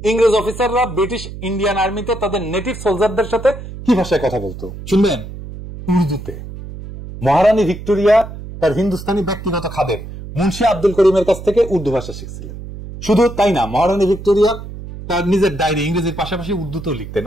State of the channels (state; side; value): noise; right; hum, 11 dB below the sound